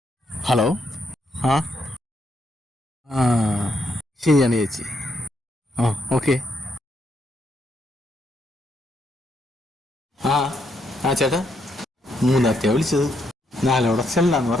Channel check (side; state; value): both; normal; correlation 0.77